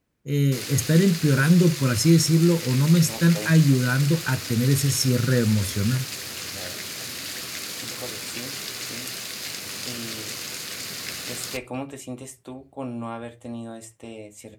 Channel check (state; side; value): identical; both; correlation 1.00